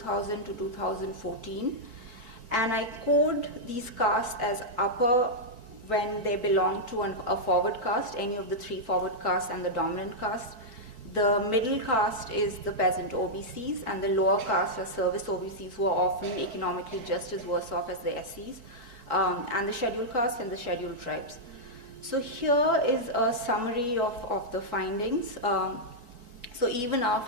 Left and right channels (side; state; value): left; late; 4.6 ms